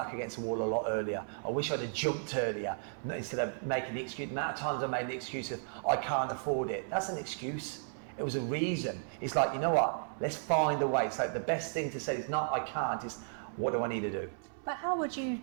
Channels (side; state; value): left; silent; 55 dB below the other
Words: against the wall a lot earlier. I wish I'd have jumped earlier instead of making the excuse. The amount of times I made the excuse of, I can't afford it. That's an excuse. It was a reason. It's like, you know what? Let's find a way. It's like the best thing to say is not I can't, is what do I need to do? But how would you